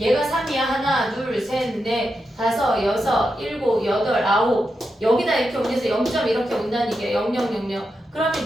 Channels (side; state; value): both; normal; correlation 0.87